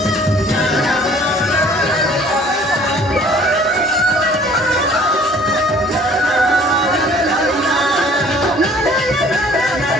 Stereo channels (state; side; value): normal; both; correlation 0.53